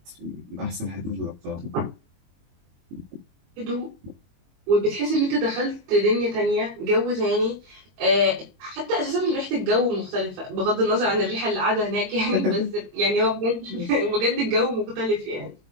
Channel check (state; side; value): late; left; 22 ms